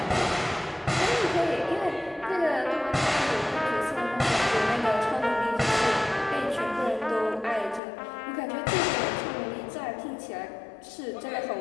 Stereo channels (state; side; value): drops out; right; at 7.8 s